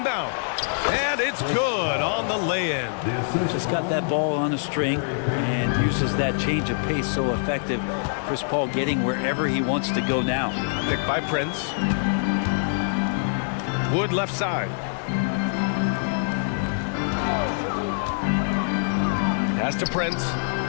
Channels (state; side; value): silent; right; digital silence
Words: And it's good on the lay-in. Just got that ball on a string and uses that change of pace so effective. Chris Paul getting wherever he wants to go now. Picked by Prince. Wood left side. Pass to Prince.